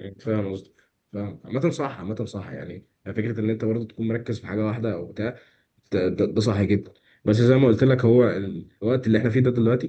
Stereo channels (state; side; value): identical; both; correlation 1.00